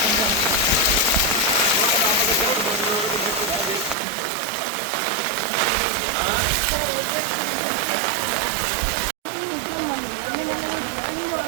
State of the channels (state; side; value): drops out; left; at 4.0 s